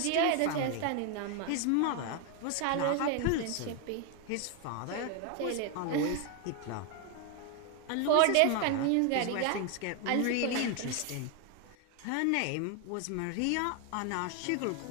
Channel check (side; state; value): both; different; correlation 0.01